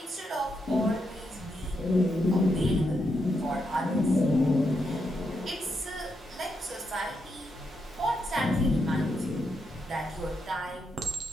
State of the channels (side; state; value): both; normal; correlation 0.82